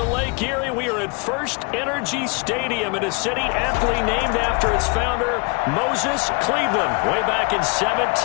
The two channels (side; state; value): right; quieter; 32.1 dB